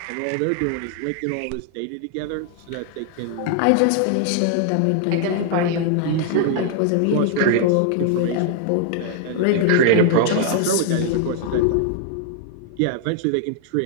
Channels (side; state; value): both; different; correlation -0.01